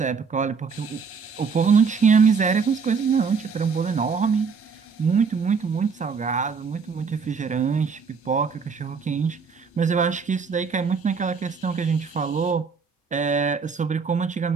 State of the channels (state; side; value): quieter; left; 5.4 dB